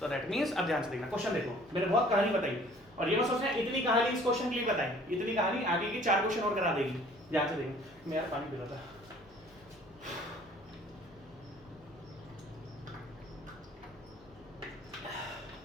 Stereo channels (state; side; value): noise; left; hum, 27 dB below the sound